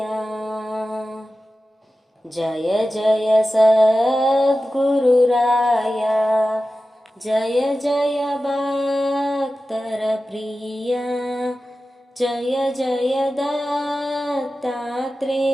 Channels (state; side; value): normal; both; correlation 0.94